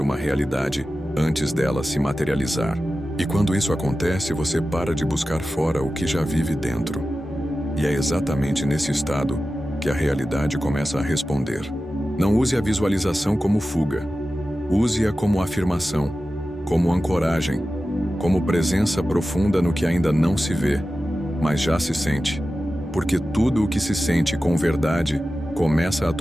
realidade antes dela se materializar. E quando isso acontece, você para de buscar fora o que já vive dentro. E é exatamente nesse estado que a realidade começa a responder. Não use a visualização como fuga. Use-a como afirmação, como ancoragem, como presença profunda no que ainda não se vê, mas já se sente. Porque tudo o que se sente com verdade começa a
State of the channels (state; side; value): normal; both; correlation 0.94